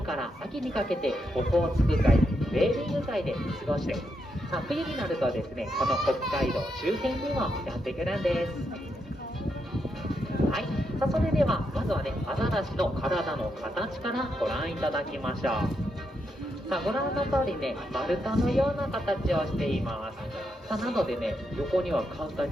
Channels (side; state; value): both; normal; correlation 0.82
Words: から秋にかけてオホーツク海、ウェーリング海で過ごして、さあ冬になるとですねこの北海道周辺にもやってくるんです。はい、さあそれではまずはねアザラシの体の形からご覧いただきましょう。さあご覧の通りね丸太のような形をしています。さあなのでね横には簡単